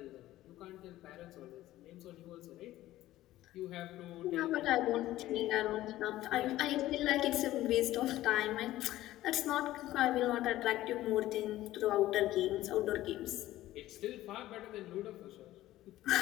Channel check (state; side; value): quieter; right; 15.2 dB